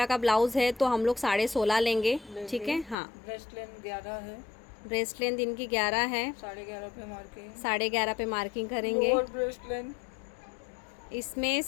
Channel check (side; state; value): right; drops out; at 3.0 s